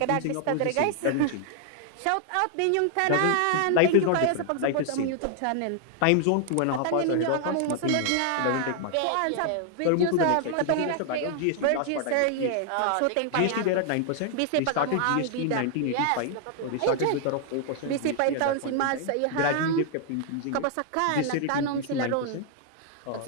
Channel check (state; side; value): different; both; correlation 0.00